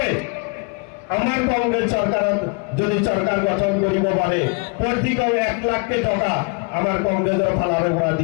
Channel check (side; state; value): right; quieter; 31.9 dB